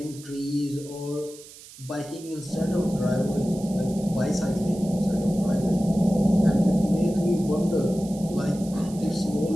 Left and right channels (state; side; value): noise; right; hiss, 19 dB below the sound